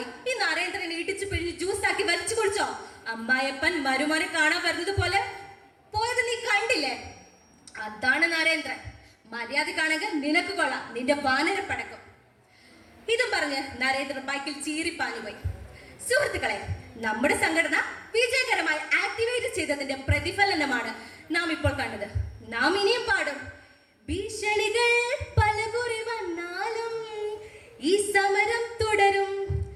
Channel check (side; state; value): both; identical; correlation 1.00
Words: ഈ നരേന്ദ്രനെ ഇടിച്ചു പിഴിഞ്ഞ് ജ്യൂസാക്കി വലിച്ചു കുടിച്ചോ? അമ്മായപ്പൻ മരുമോനെ കാണാൻ വരുന്നത് പോലെ പോയത് നീ കണ്ടില്ലേ? അതാണ് നരേന്ദ്രൻ. മര്യാദക്കാണെങ്കിൽ നിനക്ക് കൊള്ളാം, നിന്റെ വാനര പടക്കം. ഇതും പറഞ്ഞ് നരേന്ദ്രൻ ബൈക്കിൽ ചീറിപ്പാഞ്ഞു പോയി. സുഹൃത്തുക്കളെ, നമ്മുടെ സംഘടന വിജയകരമായി ആക്ടിവേറ്റ് ചെയ്തതിന്റെ പ്രതിഫലനമാണ് നാം ഇപ്പോൾ കണ്ടത്. നാം ഇനിയും പാടും. ഭീഷണികൾ പലകുറി വന്നാലും ഈ സമരം തുടരും.